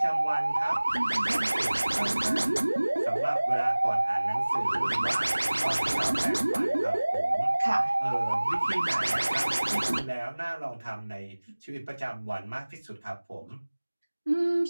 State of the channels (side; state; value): both; inverted; correlation -1.00